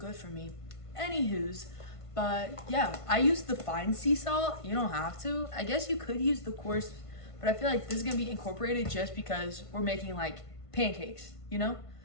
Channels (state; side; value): late; right; 1.5 ms